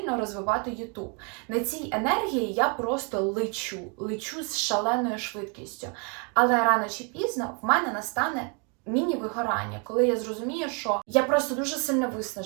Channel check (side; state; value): left; quieter; 35.5 dB